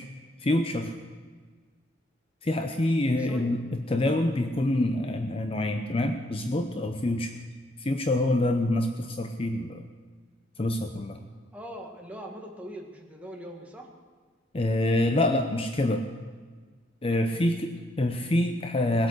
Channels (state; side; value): normal; both; correlation 0.72